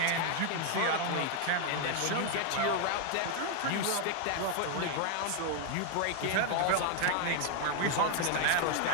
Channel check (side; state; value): both; different; correlation 0.00